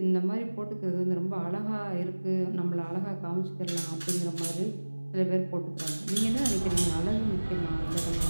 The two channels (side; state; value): both; inverted; correlation -1.00